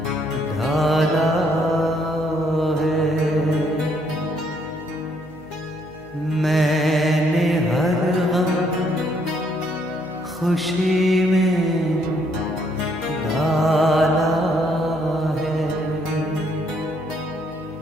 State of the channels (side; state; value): right; noise; hum, 23 dB below the sound